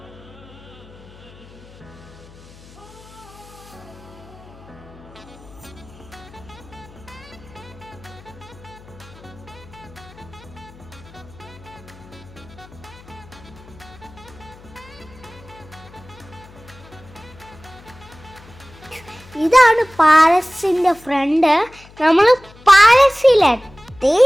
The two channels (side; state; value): left; noise; hum, 22 dB below the sound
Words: ഇതാണ് പാലസിൻ്റെ ഫ്രണ്ട്. നമ്മൾ പാലസിലെത്തി.